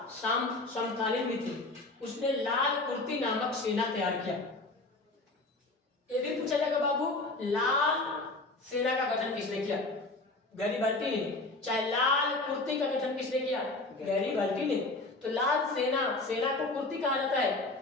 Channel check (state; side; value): quieter; right; 3.1 dB